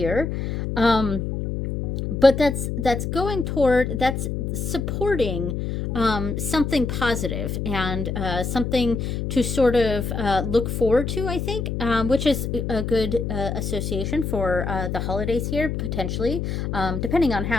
But that's supporting something positive and something to sort of look forward to, I think, which is a good association for the holidays here, potentially, depending on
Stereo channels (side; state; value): left; noise; hum, 2 dB below the sound